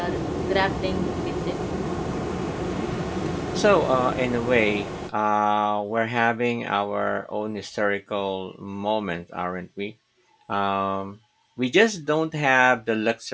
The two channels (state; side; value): identical; both; correlation 1.00